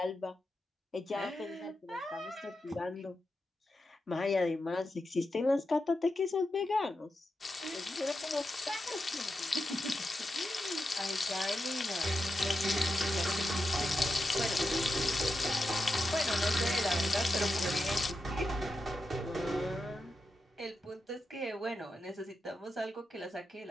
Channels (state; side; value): normal; both; correlation 0.88